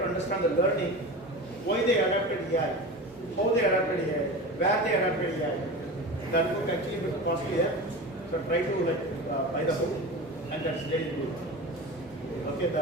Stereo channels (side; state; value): both; normal; correlation 0.30